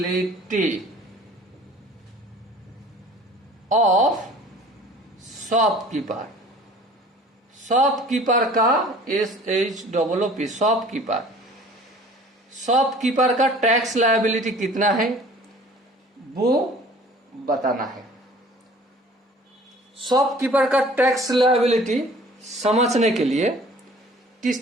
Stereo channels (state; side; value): normal; both; correlation 0.48